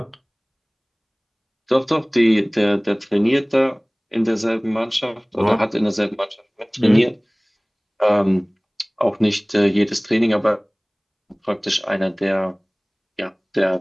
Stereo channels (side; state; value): both; identical; correlation 1.00